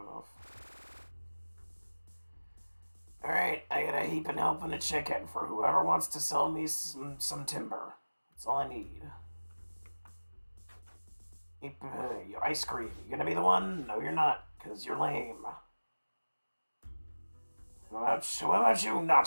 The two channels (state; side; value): inverted; both; correlation -1.00